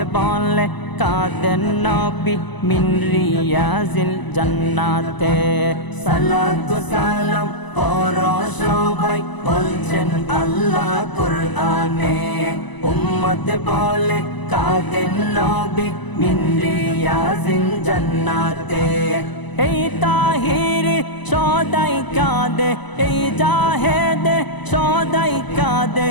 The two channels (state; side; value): late; right; 1.0 ms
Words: বলে কাঁদেন নবী মিন রিয়াজিল জান্নাতে। সালাতু সালাম পড় সবাই বলছেন আল্লাহ কুরআনে। উম্মত বলে কাঁদেন নবী মিন রিয়াজিল জান্নাতে। এই তাহির সদাই কাঁদে, এই জাহেদে সদাই কাঁদে